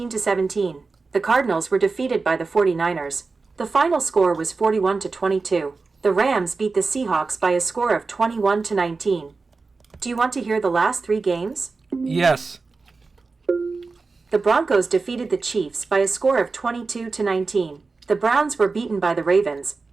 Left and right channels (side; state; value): left; quieter; 4.1 dB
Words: The Cardinals were defeated by the 49ers. The final score was 41-22. The Rams beat the Seahawks by a score of 21-19. Do you want to hear the last 3 games? Yes. The Broncos defeated the Chiefs by a score of 22-19. The Browns were beaten by the Ravens.